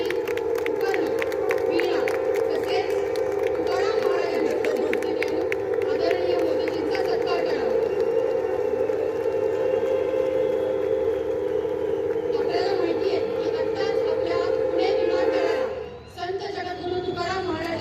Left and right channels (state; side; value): identical; both; correlation 1.00